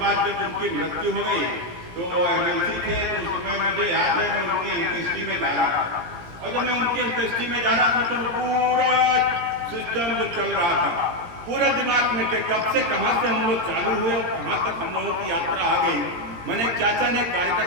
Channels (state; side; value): late; left; 17 ms